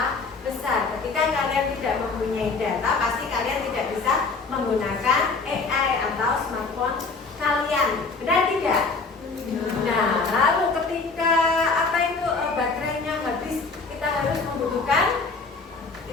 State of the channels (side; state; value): right; quieter; 4.2 dB